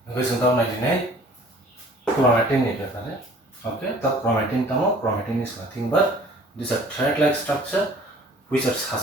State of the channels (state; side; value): normal; both; correlation 0.51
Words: Because sometimes I deny chromatin is there. Okay, the chromatin is nothing but this a thread-like structure which are